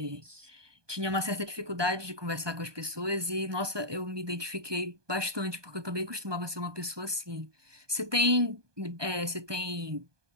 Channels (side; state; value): left; late; 1.2 ms